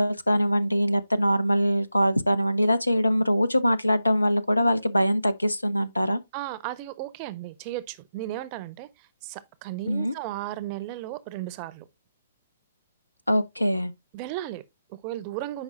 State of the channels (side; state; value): both; inverted; correlation -0.90